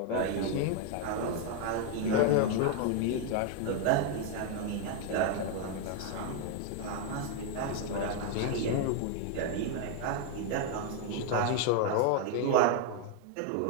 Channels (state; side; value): different; both; correlation 0.01